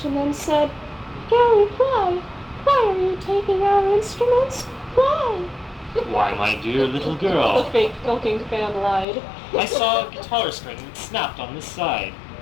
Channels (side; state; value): right; drops out; at 9.1 s